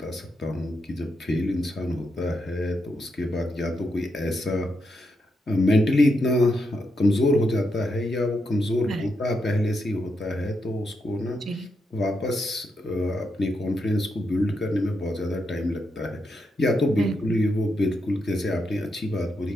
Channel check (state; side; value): normal; both; correlation 0.82